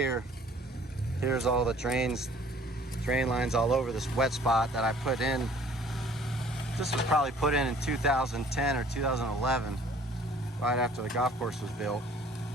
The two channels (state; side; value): normal; both; correlation 0.54